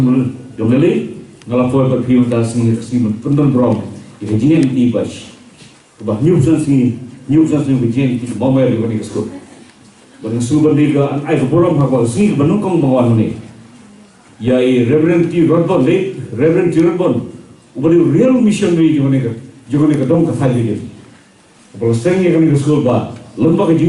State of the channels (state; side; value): identical; both; correlation 1.00